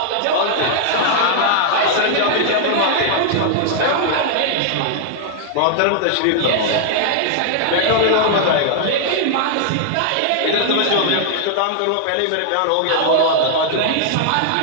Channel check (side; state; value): both; different; correlation -0.01